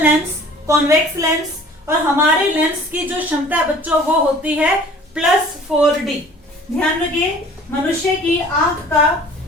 लेंस, कॉन्वेक्स लेंस, और हमारे लेंस की जो क्षमता है बच्चों वो होती है +4D। ध्यान रखिए मनुष्य की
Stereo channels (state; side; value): normal; both; correlation 0.49